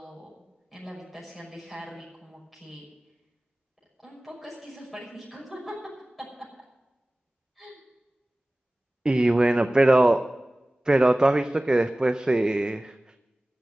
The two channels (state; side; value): normal; both; correlation 0.98